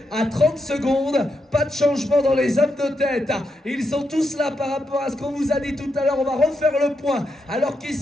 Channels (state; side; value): normal; both; correlation 0.83